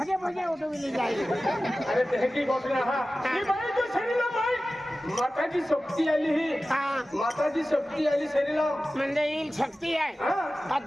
भजे उठविली जाए अरे तेजी कोटू हा ही भाई जो शरीराम भाई माताजी शक्ती आली ही माताजी शक्ती आली शरीराम म्हणजे येईल शक्ती आहे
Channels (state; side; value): normal; both; correlation 0.96